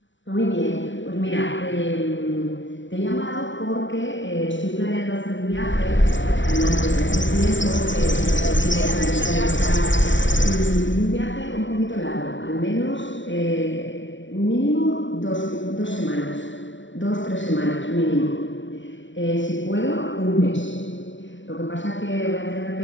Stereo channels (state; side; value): late; right; 0.55 ms